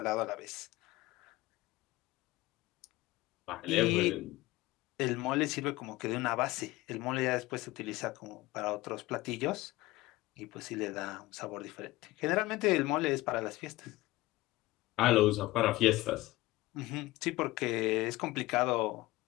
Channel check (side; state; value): right; quieter; 18.9 dB